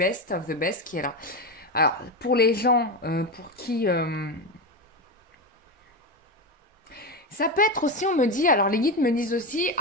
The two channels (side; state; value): both; normal; correlation 0.15